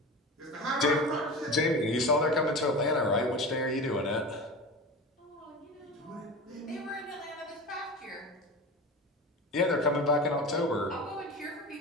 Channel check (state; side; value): normal; both; correlation 0.30